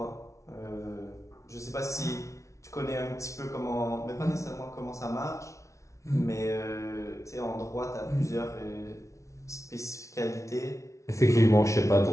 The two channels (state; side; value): late; right; 0.14 ms